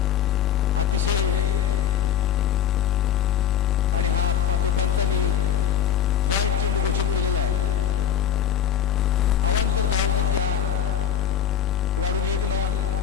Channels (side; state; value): right; quieter; 9.8 dB